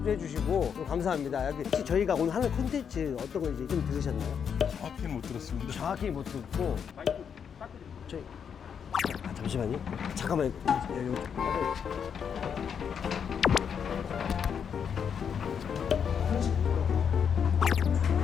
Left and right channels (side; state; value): right; quieter; 7.4 dB